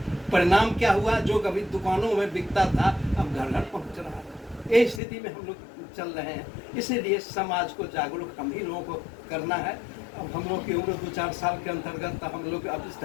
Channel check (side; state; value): right; drops out; at 5.0 s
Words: परिणाम क्या हुआ? जो कभी दुकानों में बिकता था अब घर घर पहुंच रहा है। ये स्थिति में हम लोग चल रहे हैं। इसीलिए समाज को जागरूक हम ही लोगों को करना है। अब हम लोग की उम्र 2-4 साल के अंतर्गत, हम लोग अब इस